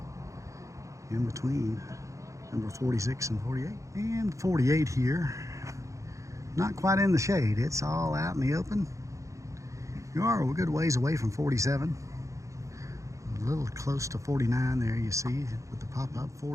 In between number 46 and 48. And 48 here. Not quite in the shade, it's all out in the open. You are a good ways away from 47. A little close to 49 there, you see, with the pop-up.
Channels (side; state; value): left; late; 0.15 ms